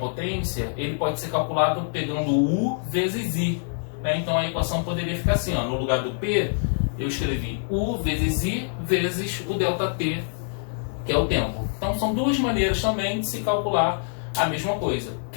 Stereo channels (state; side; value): silent; right; 62 dB below the other